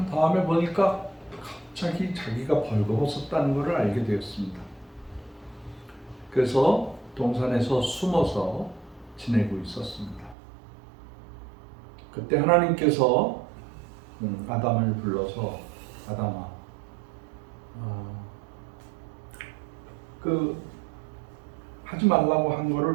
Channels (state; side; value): drops out; left; at 10.4 s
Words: 다음에 보니까 갑자기 자기가 벌거벗었다는 것을 알게 되었습니다. 그래서 동산에서 숨어서 지내고 있었습니다. 그때 하나님께서 아담을 불러서 아담아, 하지 말라고 한